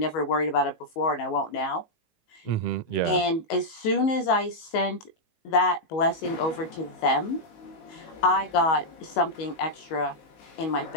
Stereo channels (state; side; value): late; right; 19 ms